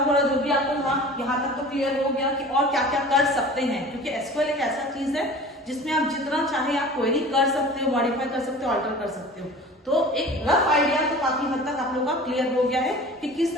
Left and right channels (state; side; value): normal; both; correlation 0.41